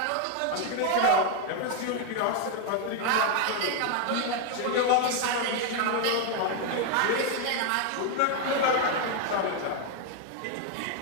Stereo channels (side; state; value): both; different; correlation 0.01